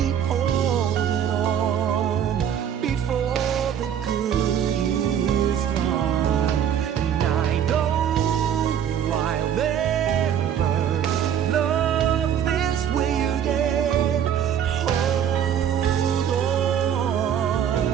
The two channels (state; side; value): quieter; left; 9.1 dB